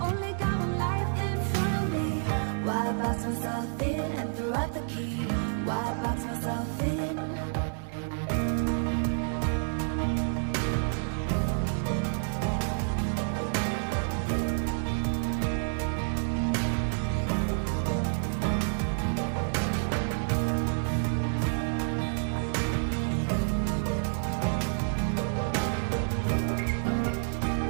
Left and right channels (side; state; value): left; silent; digital silence